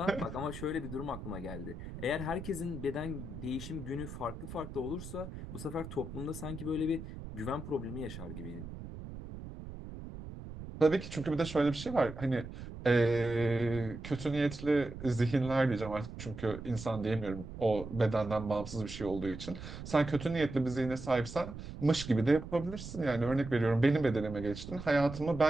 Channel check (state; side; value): noise; right; rumble, 11 dB below the sound